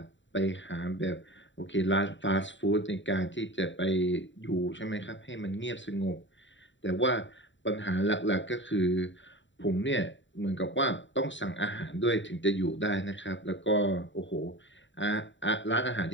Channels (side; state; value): right; late; 0.54 ms